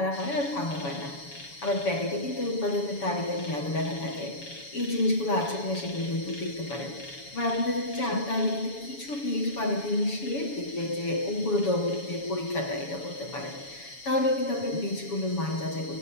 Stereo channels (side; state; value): right; late; 7.1 ms